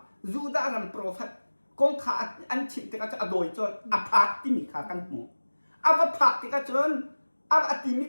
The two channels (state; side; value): inverted; both; correlation -1.00